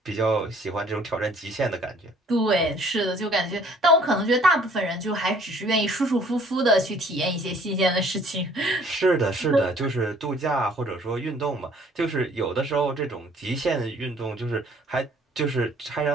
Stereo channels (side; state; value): both; normal; correlation 0.57